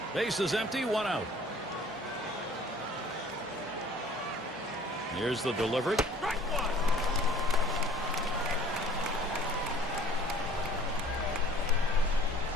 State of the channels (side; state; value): both; normal; correlation 0.51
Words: Base is empty, 1 out. Here's the delivery.